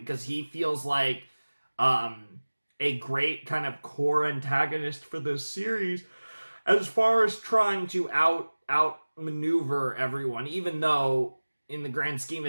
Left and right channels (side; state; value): both; inverted; correlation -1.00